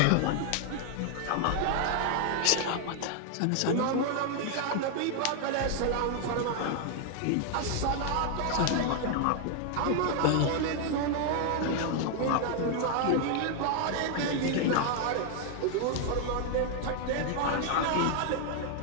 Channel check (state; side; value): different; both; correlation 0.00